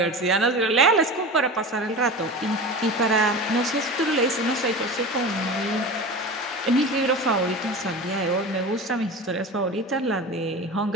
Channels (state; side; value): normal; both; correlation 0.31